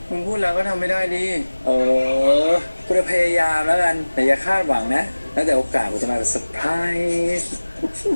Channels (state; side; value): inverted; both; correlation -1.00